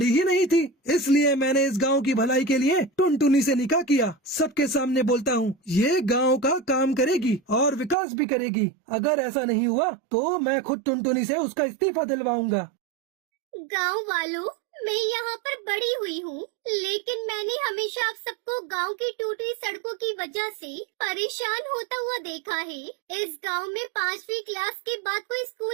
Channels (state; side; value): drops out; left; at 8.0 s